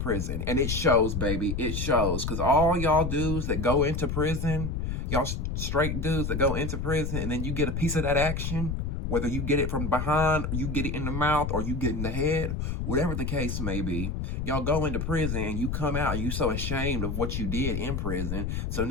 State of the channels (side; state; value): left; noise; rumble, 2 dB below the sound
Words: And it shows, baby. It shows. Because all y'all dudes that go into prison, y'all straight dudes that go into prison, and then you get a piece of that action, whether you get it from behind, or you get it in the mouth, or you get in the head, whatever the case may be, y'all go into prison and you come out and you so ashamed of what you did in prison. So